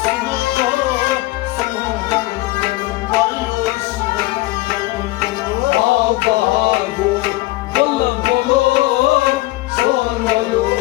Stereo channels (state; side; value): quieter; right; 19.4 dB